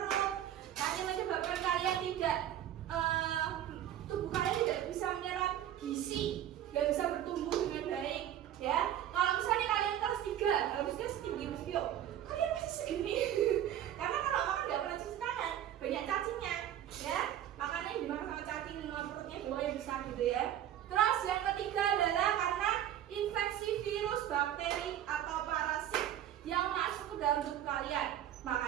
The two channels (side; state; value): left; quieter; 11.4 dB